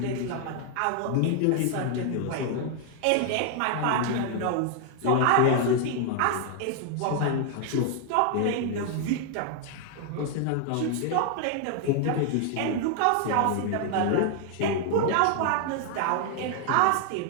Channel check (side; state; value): both; different; correlation 0.00